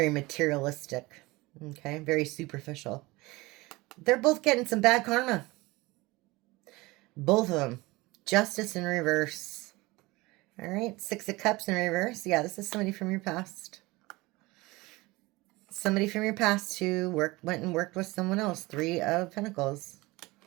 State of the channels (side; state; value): left; quieter; 21.8 dB